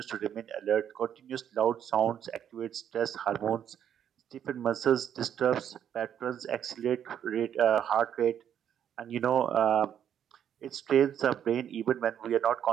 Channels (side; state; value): left; quieter; 9.4 dB